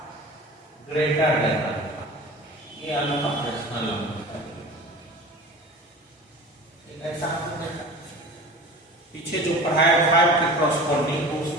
ग्रेटर देन अल्फा। ये अल्फा रेशनल नंबर है। ऐसा आपने देखा पीछे जो पढ़ाया 5 के कॉरस्पॉन्डिंग, तो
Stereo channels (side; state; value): both; normal; correlation 0.37